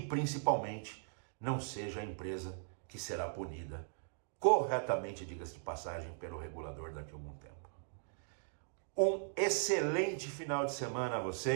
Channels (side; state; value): left; silent; digital silence